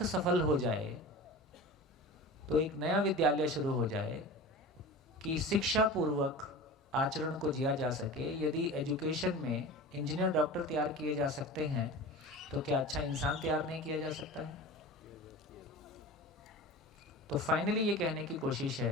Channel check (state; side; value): normal; both; correlation 0.34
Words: सफल हो जाए, तो एक नया विद्यालय शुरू हो जाए कि शिक्षा पूर्वक आचरण को जिया जा सके। यदि एजुकेशन में इंजीनियर, डॉक्टर तैयार किए जा सकते हैं, तो क्या अच्छा इंसान तैयार नहीं किया जा सकता है? तो फाइनली ये कहने की कोशिश